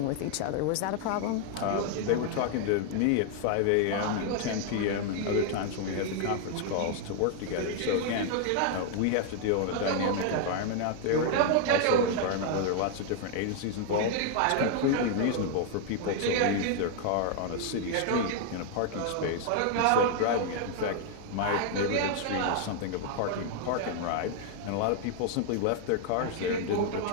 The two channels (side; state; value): both; different; correlation 0.00